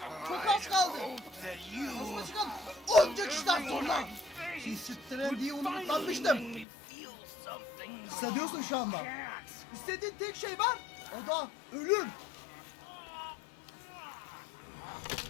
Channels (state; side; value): drops out; right; at 6.7 s